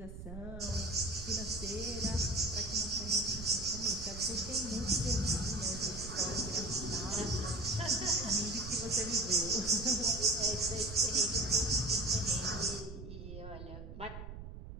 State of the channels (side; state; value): right; noise; rumble, 10 dB below the sound